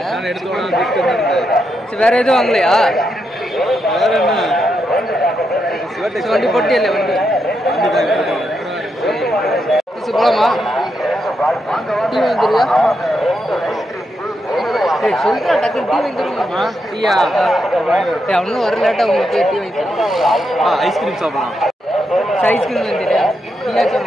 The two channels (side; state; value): both; normal; correlation 0.83